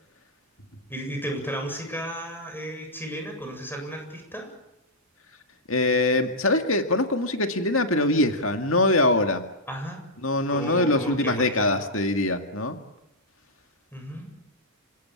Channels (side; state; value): both; normal; correlation -0.09